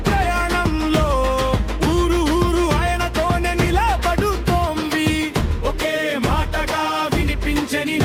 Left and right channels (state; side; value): identical; both; correlation 1.00